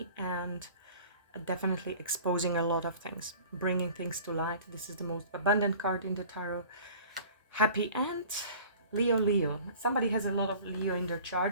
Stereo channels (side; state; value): both; inverted; correlation -0.45